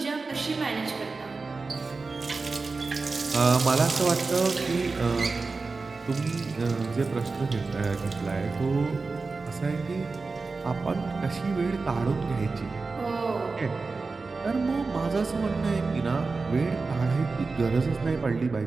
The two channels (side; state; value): left; quieter; 4.0 dB